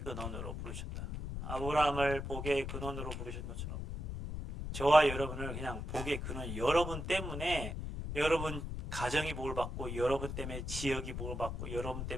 근원으로 부르셨다. 아브라함을 복의 근원으로 부르신 것처럼 저와 여러분을 그냥 복의 근원, 여러분 때문에 여러분 가정이 복을 받고, 여러분 때문에 지역이 복을 받고, 여러분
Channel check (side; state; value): left; noise; rumble, 5 dB below the sound